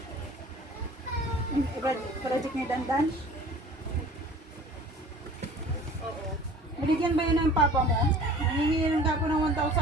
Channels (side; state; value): both; normal; correlation 0.46